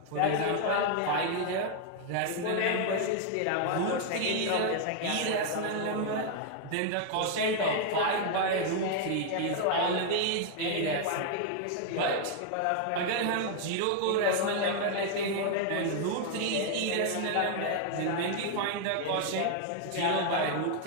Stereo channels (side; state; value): both; different; correlation 0.00